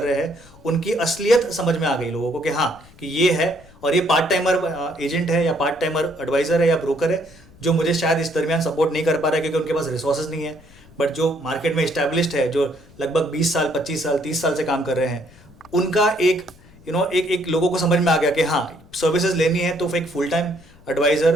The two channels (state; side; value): noise; left; rumble, 24 dB below the sound